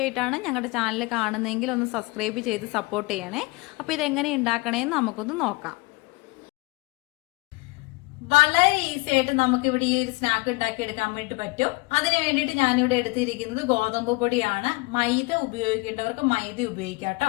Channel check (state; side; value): quieter; right; 24.8 dB